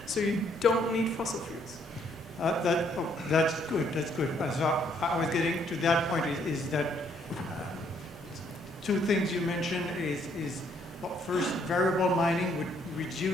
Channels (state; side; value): normal; both; correlation 0.68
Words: So you don't need fossil fuels. That's good, that's good. So I was getting to that point is that two things you mentioned is well, first, variable mining would